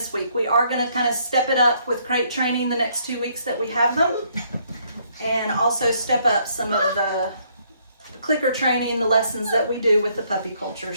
week. We are going to kind of step it up with crate training the next 2 weeks that we have them, and also step up some of the clicker training, the lessons that we do with the puppy culture.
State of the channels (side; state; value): both; inverted; correlation -0.68